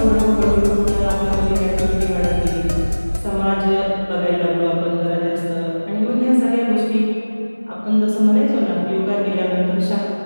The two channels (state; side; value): inverted; both; correlation -1.00